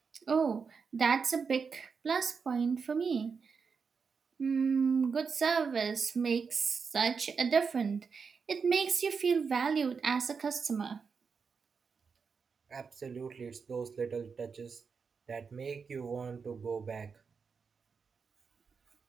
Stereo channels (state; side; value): quieter; left; 5.5 dB